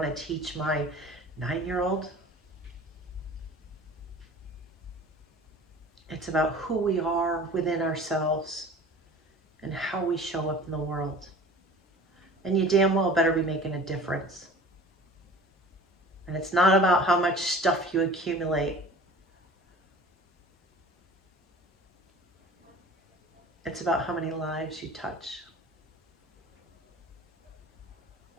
to teach my 9-year-old. It's about who we are within ourselves and how we show up in the world. And you damn well better be making a difference. And it's not about how much stuff you accumulate. It's about how many lives you touch.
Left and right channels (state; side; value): normal; both; correlation 0.43